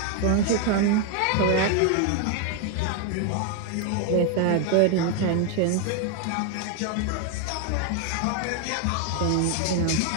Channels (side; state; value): both; different; correlation 0.00